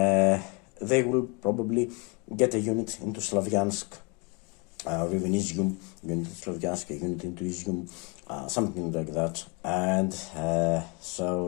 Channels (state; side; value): quieter; right; 31.6 dB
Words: will probably get a unit into Slavyansk, or even Izium, unit into Slavyansk, a unit into Izium, something like that. And